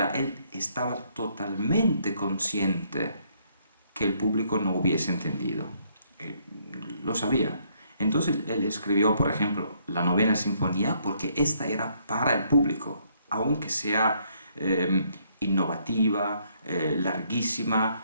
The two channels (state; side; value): inverted; both; correlation -0.69